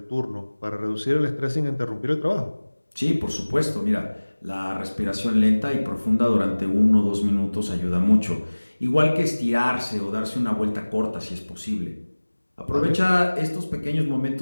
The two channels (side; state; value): both; inverted; correlation -1.00